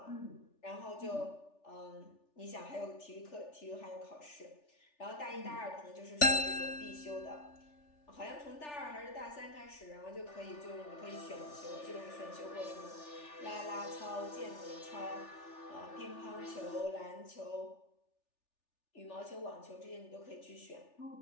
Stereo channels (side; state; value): right; late; 3.4 ms